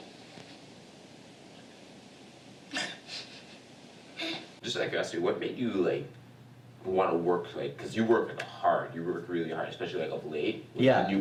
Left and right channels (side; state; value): both; identical; correlation 1.00